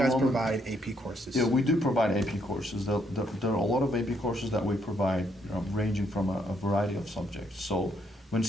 provide AP courses? Yeah, we do provide AP courses. There are a lot of AP courses that we provide, ranging from a variety of subjects. So when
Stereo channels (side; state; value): both; normal; correlation 0.73